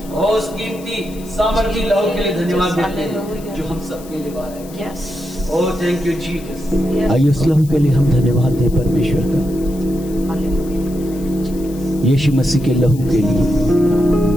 और उस कीमती सामर्थी लहू के लिए धन्यवाद देते हैं जो हम सबके लिए बाहर है। Oh thank you Jesus. आइए उस लहू के लिए हम धन्यवाद दें परमेश्वर का, यीशु मसीह के लहू के लिए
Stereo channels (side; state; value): left; noise; hiss, 20 dB below the sound